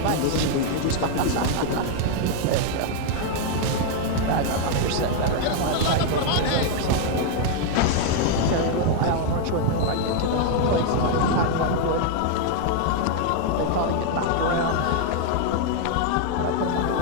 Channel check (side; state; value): both; different; correlation 0.00